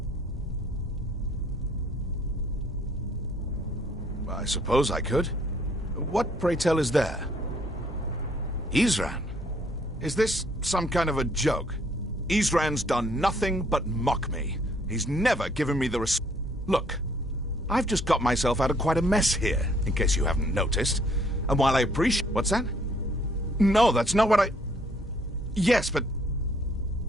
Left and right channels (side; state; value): both; normal; correlation 0.64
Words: I suppose I could. What, pray tell, is there? Isran? Is this some kind of a joke? Isran's done nothing but mock me. He's never given me the Look, I've just got myself out of quite a mess here, in case you haven't noticed. And while I appreciate... What's that? No, that's not what I... Yes, but...